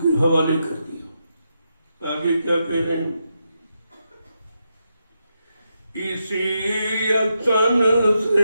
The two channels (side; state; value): both; inverted; correlation -0.84